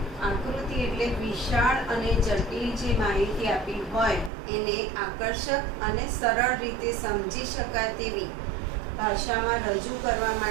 આકૃતિ એટલે વિશાળ અને જટિલ જે માહિતી આપી હોય એને આકર્ષક અને સરળ રીતે સમજી શકાય તેવી ભાષામાં રજૂ કરવા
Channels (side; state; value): left; drops out; at 4.3 s